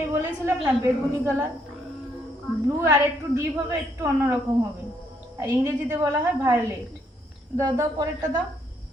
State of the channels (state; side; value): normal; both; correlation 0.72